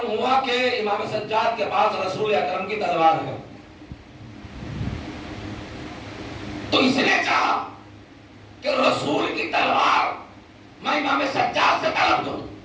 ہوا کہ امام سجاد کے پاس رسول اکرم کی تلوار ہے تو اس اس نے چاہا کہ رسول کی تلوار میں امام سجاد سے طلب دوں،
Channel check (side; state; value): both; identical; correlation 1.00